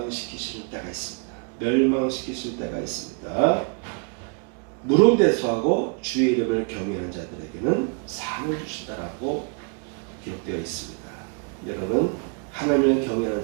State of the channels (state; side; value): quieter; left; 37.3 dB